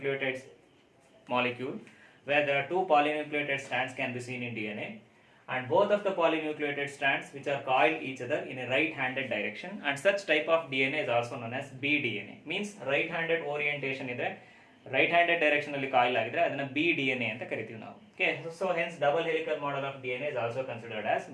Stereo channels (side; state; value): both; identical; correlation 1.00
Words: molecule where there are two polynucleated strands can be seen in DNA, and both of the polynucleated strands which are coiled each other in a right-handed direction, and such type of DNA is also known as BDNA. Means right-handed orientation ಇದೆ, right-handed direction ಅಲ್ಲಿ coil ಆಗಿದ್ರೆ ಅದನ್ನ BDNA ಅಂತ ಕರಿತೀವಿ ನಾವು. Okay, so hence double helical model of DNA is also considered as